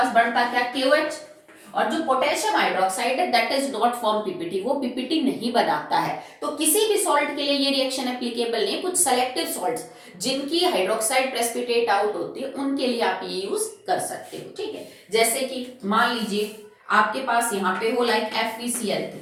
बनता क्या, KOH। और जो पोटेशियम हाइड्रोक्साइड है that is not form PPT, वो पीपीटी नहीं बनाता है। तो किसी भी सॉल्ट के लिए ये रिएक्शन एप्लीकेबल नहीं। कुछ सेलेक्टिव सॉल्ट्स जिनकी हाइड्रोक्साइड प्रेसिपिटेट आउट होती है उनके लिए आप ये यूज कर सकते हो, ठीक है। जैसे कि मान लीजिए आपके पास यहाँ पे हो like FeCl3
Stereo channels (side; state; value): both; identical; correlation 1.00